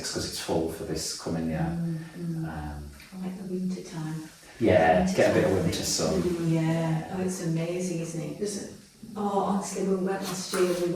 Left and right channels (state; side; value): identical; both; correlation 1.00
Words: because it's full for this coming year. I like the winter time. Yeah, Winter get a bit of time, winter it's sun. really- Yeah, oh, it's amazing, isn't it? Oh, honestly, when we went last year,